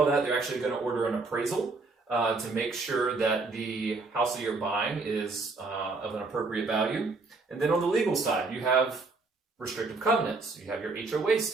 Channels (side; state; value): left; quieter; 3.8 dB